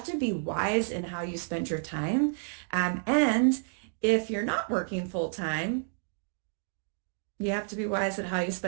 to be wise in how you spend your time. And if you're not working full time, you have to be wise at how you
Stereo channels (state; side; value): silent; left; digital silence